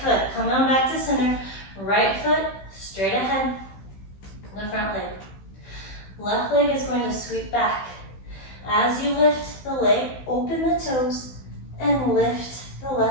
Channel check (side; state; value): right; late; 16 ms